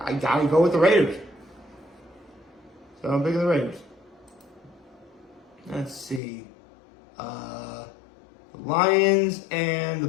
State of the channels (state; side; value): drops out; right; at 6.2 s